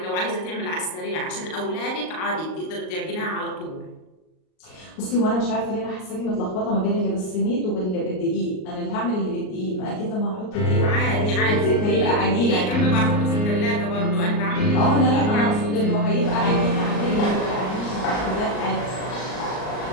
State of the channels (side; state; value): right; late; 38 ms